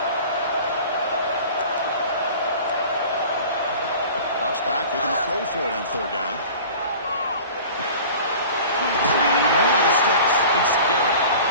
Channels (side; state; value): both; inverted; correlation -0.41